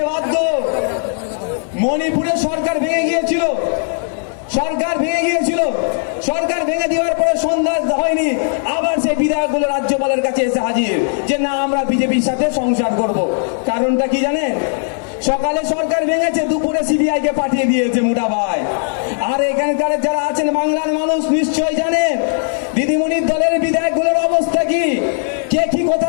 বাধ্য। মণিপুরে সরকার ভেঙে গিয়েছিল, সরকার ভেঙে গিয়েছিল, সরকার ভেঙে দেওয়ার পরে সন্ধ্যা হয়নি, আবার সেই বিধায়কগুলো রাজ্যপালের কাছে এসে হাজির যে না, আমরা বিজেপির সাথে সংসার করব। কারণটা কি জানেন? সকালে সরকার ভেঙেছে, দুপুরে সিবিআই কে পাঠিয়ে দিয়েছে মোটা ভাই। আর এখানকার যারা আছেন বাংলার মানুষ নিশ্চয় জানেন দিদিমণির দলের বিধায়কগুলোর অবস্থা কি, কে কি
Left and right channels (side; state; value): right; silent; 61 dB below the other